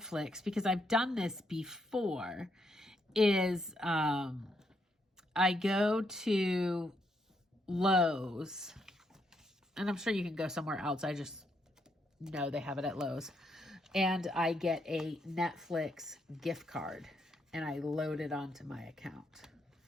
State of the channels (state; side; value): normal; both; correlation 0.76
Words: because I've done this before, is I go to Lowe's, and I'm sure you can go somewhere else. I just know they have it at Lowe's. And I get a Netflix gift card, and I load it onto my account.